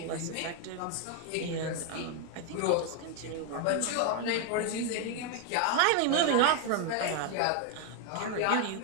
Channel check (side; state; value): both; different; correlation 0.01